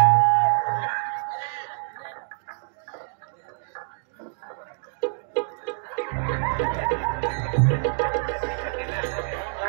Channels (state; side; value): silent; left; 61 dB below the other